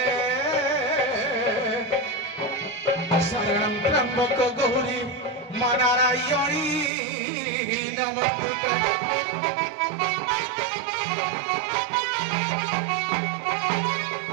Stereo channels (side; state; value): left; drops out; at 6.9 s